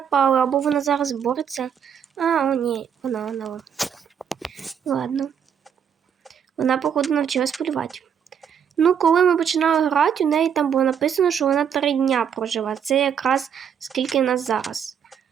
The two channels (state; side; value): quieter; left; 7.9 dB